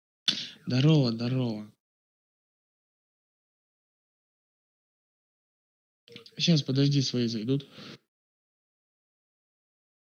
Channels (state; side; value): identical; both; correlation 1.00